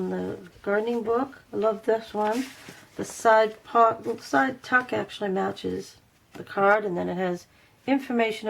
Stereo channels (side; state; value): both; identical; correlation 1.00